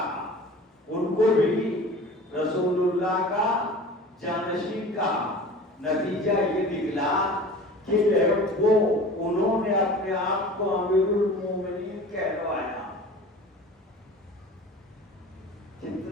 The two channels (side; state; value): both; normal; correlation 0.40